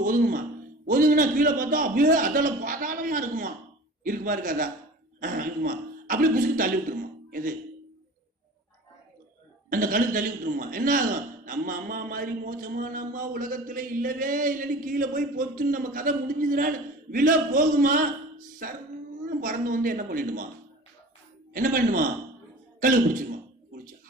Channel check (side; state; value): both; normal; correlation 0.40